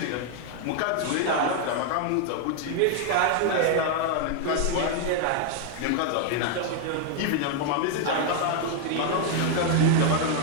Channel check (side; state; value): both; different; correlation 0.00